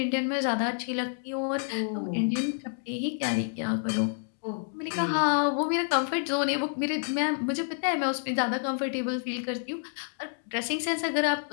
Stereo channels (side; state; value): right; silent; digital silence